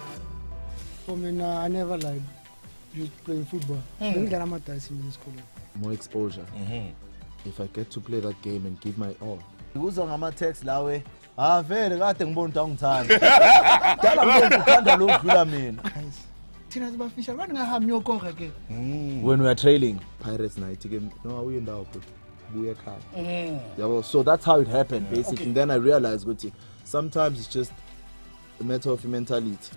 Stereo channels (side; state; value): both; inverted; correlation -1.00